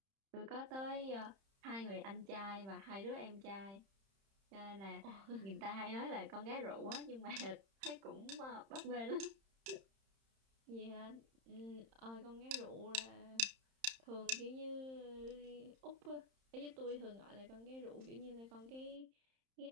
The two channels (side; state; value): left; late; 31 ms